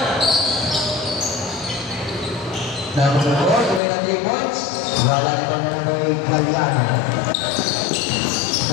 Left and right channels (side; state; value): right; drops out; at 3.8 s